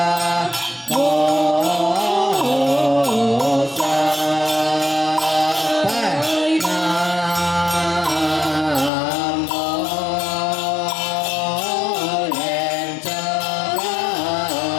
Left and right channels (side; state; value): right; drops out; at 8.9 s